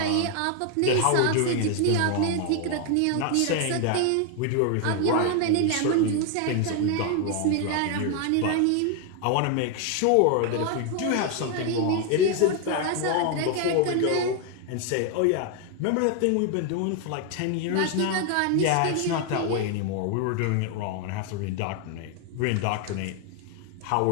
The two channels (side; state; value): both; different; correlation 0.01